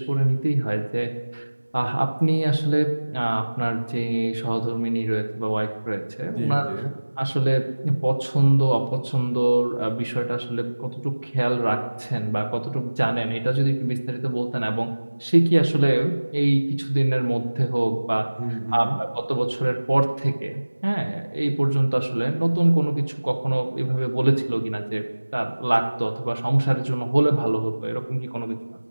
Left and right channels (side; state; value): both; inverted; correlation -1.00